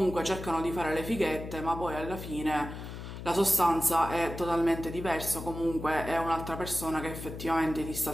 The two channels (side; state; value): left; noise; hum, 9 dB below the sound